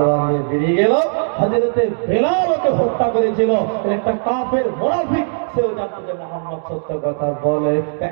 নিয়ে বেরিয়ে গেল। হযরতে বেলাল ওকে হত্যা করেছিল একটা কাফের মুনাফিক। সেও জানতো যে মুহাম্মদ সত্য কথা বলে।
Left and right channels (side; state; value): left; silent; digital silence